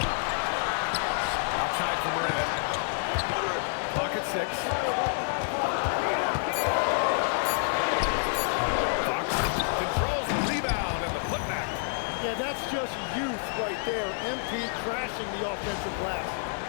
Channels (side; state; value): right; silent; digital silence